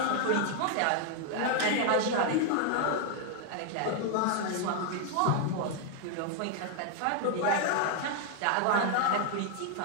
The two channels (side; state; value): both; different; correlation 0.00